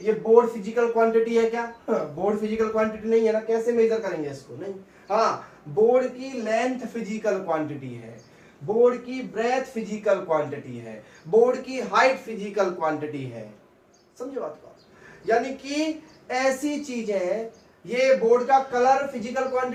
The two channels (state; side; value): identical; both; correlation 1.00